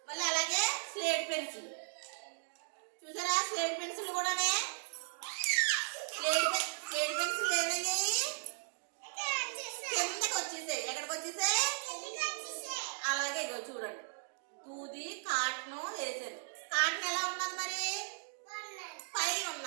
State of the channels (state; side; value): silent; left; digital silence